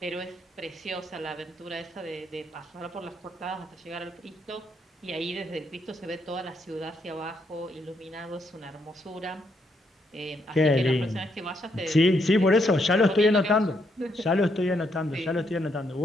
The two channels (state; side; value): normal; both; correlation 0.76